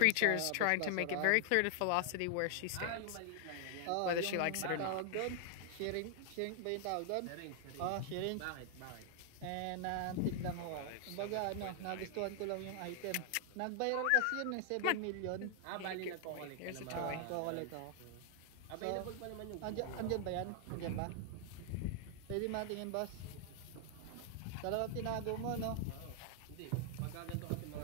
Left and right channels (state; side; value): different; both; correlation 0.00